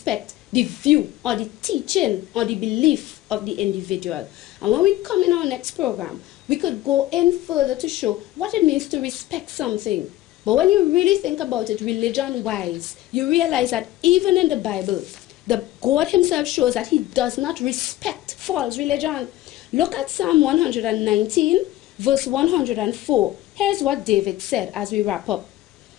the view or the teaching or the belief of the individual. And when we come in our next program, we could go in further to show what it means to respect something. But when you really think about it religion-wise, you realize that even in the Bible, the God himself shows that he does not respect false religion. Look at Psalm 119, verse 104. Here's what David said as we wrap up.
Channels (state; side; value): quieter; right; 15.2 dB